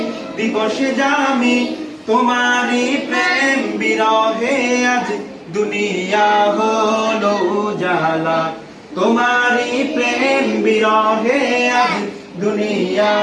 দিবসে দামি তোমারই প্রেম বিরহে আজ দুনিয়া হলো উজালা তোমারই প্রেম বিরহে আজ দুনিয়া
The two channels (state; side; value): identical; both; correlation 1.00